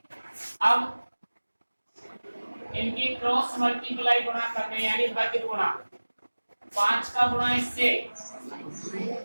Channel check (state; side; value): inverted; both; correlation -1.00